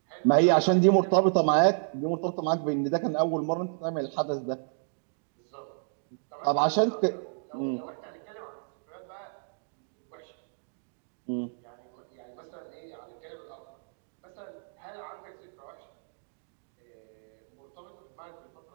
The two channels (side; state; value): left; silent; digital silence